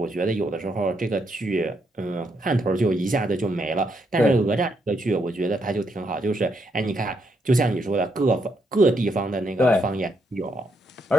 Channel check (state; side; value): normal; both; correlation 0.77